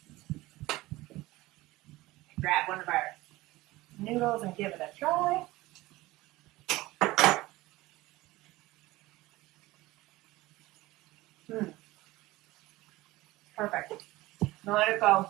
Grab one of our noodles and give it a try. Perfect. Now let it go.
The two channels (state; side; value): quieter; left; 18.9 dB